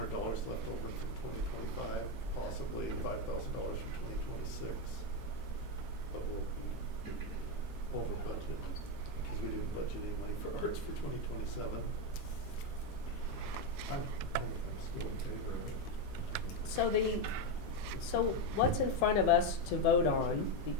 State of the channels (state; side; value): normal; both; correlation 0.07